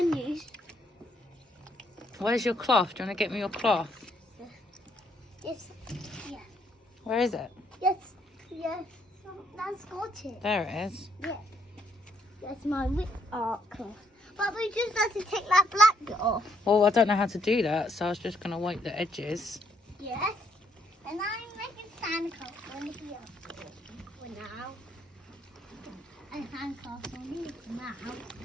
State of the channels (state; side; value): normal; both; correlation 0.71